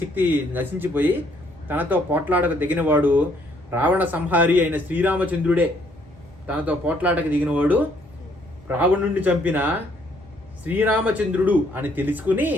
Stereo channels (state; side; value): noise; right; rumble, 26 dB below the sound